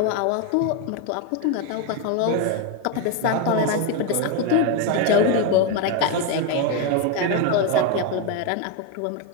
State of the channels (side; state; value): both; different; correlation 0.02